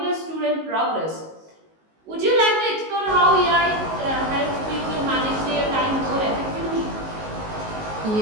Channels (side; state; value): left; late; 19 ms